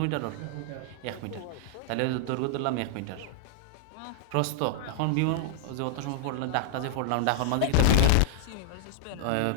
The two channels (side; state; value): both; different; correlation 0.00